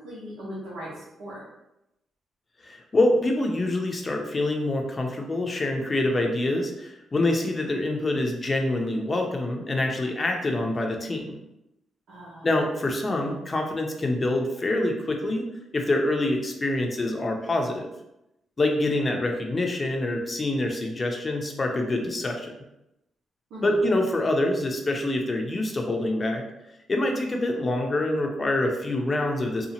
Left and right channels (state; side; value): normal; both; correlation 0.87